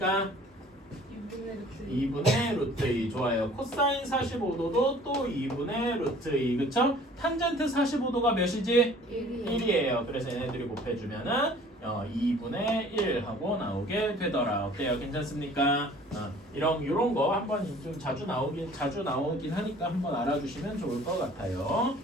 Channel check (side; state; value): both; normal; correlation 0.51